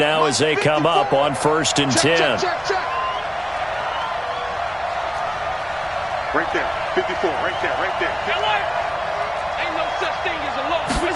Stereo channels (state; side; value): identical; both; correlation 1.00